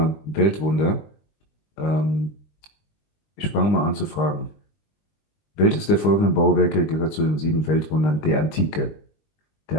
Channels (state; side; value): late; right; 20 ms